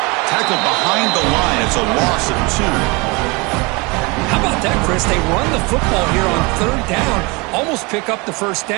Tackled behind the line. It's a loss of 2. How about that, Chris? They run the football here on third down, almost pick up the first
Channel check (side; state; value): left; quieter; 27.0 dB